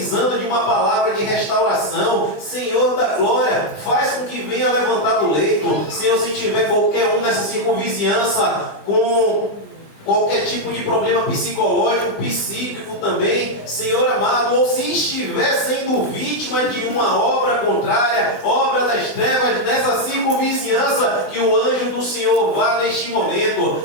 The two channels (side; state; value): right; late; 20 ms